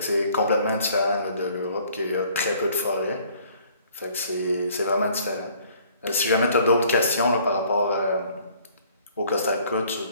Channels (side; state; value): both; inverted; correlation -0.58